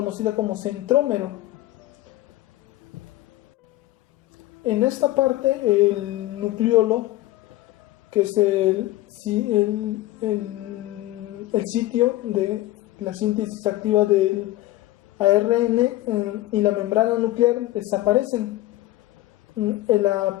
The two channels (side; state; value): right; quieter; 16.6 dB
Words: como centrómero. En esta parte, el nucleolo, que es el sitio de la síntesis activa del ARN, y la membrana nuclear desaparecen.